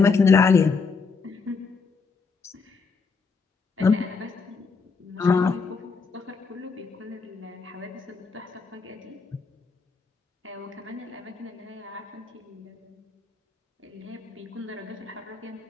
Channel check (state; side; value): quieter; right; 4.9 dB